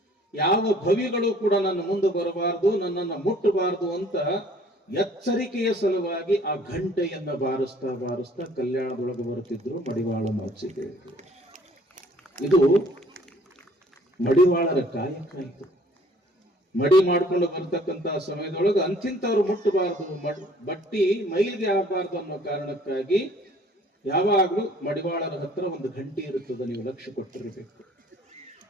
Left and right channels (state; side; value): normal; both; correlation 0.57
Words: ಯಾವ ಭವಿಗಳು ಕೂಡ ನನ್ನ ಮುಂದೆ ಬರಬಾರದು, ನನ್ನನ್ನು ಮುಟ್ಟಬಾರದು ಅಂತ ಎಚ್ಚರಿಕೆಯ ಸಲುವಾಗಿ ಆ ಗಂಟೆಯನ್ನ ಬಾರಿಸ್ತಾ ಬಾರಿಸ್ತಾ ಕಲ್ಯಾಣದೊಳಗೆ ಬರುತ್ತಿದ್ರು ಮಡಿವಾಳ ಮಾಚಿದೇವರು. ಇದು ಮಡಿವಾಳರ ಕಾಯಕ. ಇದು ಮಡಿ ಮಾಡ್ಕೊಂಡು ಬರ್ತಕ್ಕಂತ ಸಮಯದೊಳಗೆ ಅಂತಿಂತವ್ರು ಮುಟ್ಟಬಾರದು, ಬಟ್ಟಿ ಮೈಲಿಗೆ ಆಗಬಾರ್ದು ಅನ್ನೋ ಕಾರಣಕ್ಕಾಗಿ ಯಾವಾಗ್ಲೂ ಮಡಿವಾಳರ ಹತ್ರ ಒಂದು ಗಂಟೆ ಇರುತ್ತದೆ, ನೀವು ಲಕ್ಷ್ಯ ಕೊಟ್ಟಿರಬೇಕು.